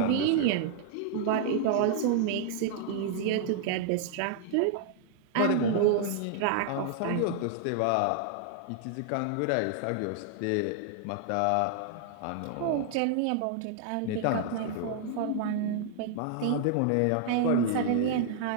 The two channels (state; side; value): different; both; correlation 0.00